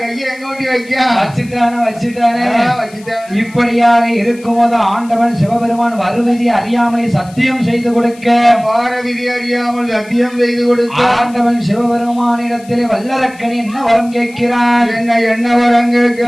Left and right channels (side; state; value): left; noise; hiss, 24 dB below the sound